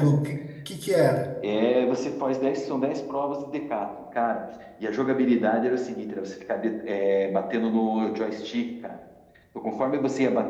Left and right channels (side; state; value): both; identical; correlation 1.00